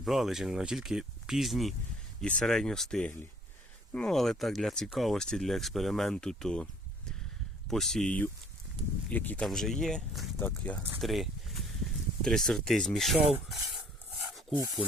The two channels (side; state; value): both; normal; correlation 0.57